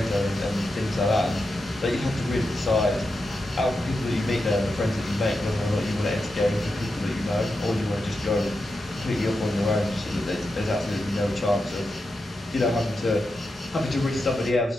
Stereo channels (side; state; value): both; normal; correlation 0.88